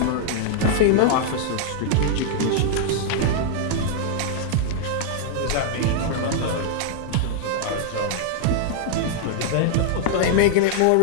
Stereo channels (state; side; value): different; both; correlation -0.01